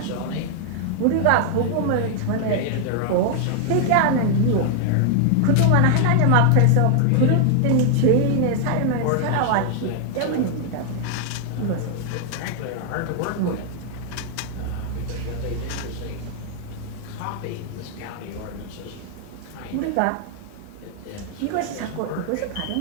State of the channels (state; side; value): different; both; correlation 0.00